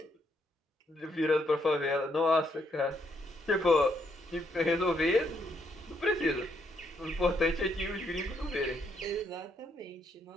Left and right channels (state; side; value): normal; both; correlation 0.75